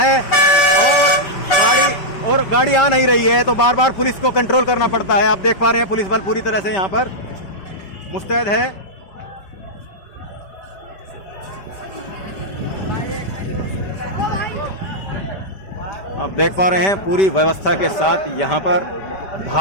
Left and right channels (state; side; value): late; right; 5.2 ms